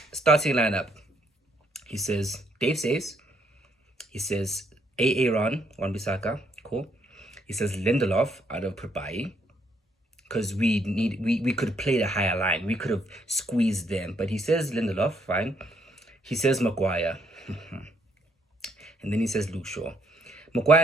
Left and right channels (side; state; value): both; normal; correlation 0.71